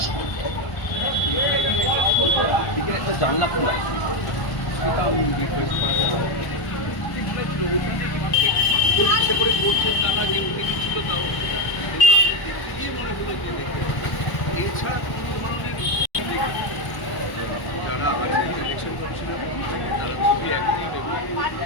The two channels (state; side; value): late; right; 1.1 ms